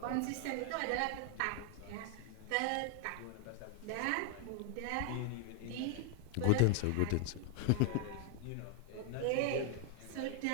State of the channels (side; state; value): both; different; correlation 0.00